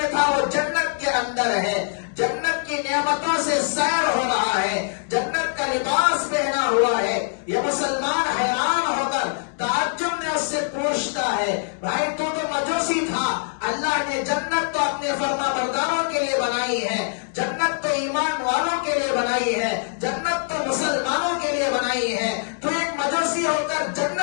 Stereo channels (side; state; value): right; silent; digital silence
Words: تھا وہ جنت کے اندر ہے، جنت کی نعمتوں سے سیر ہو رہا ہے، جنت کا لباس پہنا ہوا ہے۔ یہ مسلمان حیران ہو کر تعجب میں اس سے پوچھتا ہے، بھائی تو مجوسی تھا، اللہ نے جنت تو اپنے فرما برداروں کے لیے بنائی ہے، جنت تو ایمان والوں کے لیے بنائی ہے، جنت تو مسلمانوں کے لیے بنائی ہے، تو ایک مجوسی ہو کر